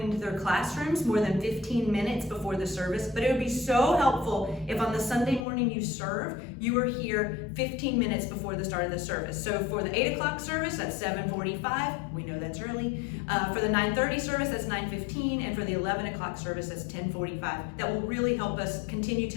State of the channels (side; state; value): right; drops out; at 5.5 s